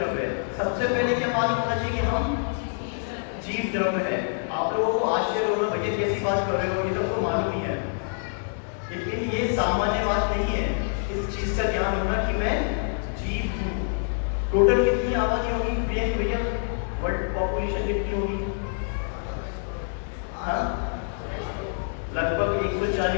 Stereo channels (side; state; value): right; silent; digital silence